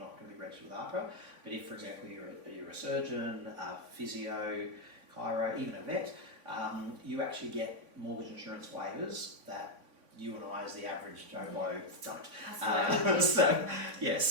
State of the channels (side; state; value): left; late; 3.5 ms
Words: going to be registered with AHPRA. But if, for example, you're a surgeon, a physio, chiro, even a vet, you actually get mortgage insurance waivers that you and I, as the average Joe Blow, don't. So